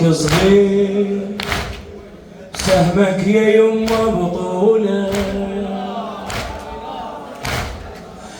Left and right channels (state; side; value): identical; both; correlation 1.00